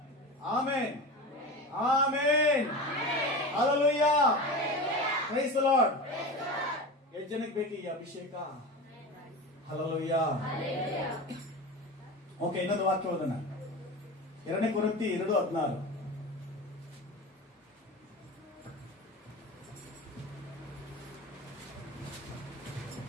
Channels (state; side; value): normal; both; correlation 0.28